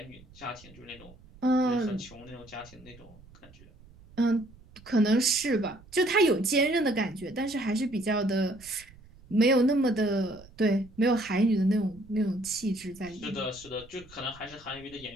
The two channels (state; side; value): noise; right; rumble, 23 dB below the sound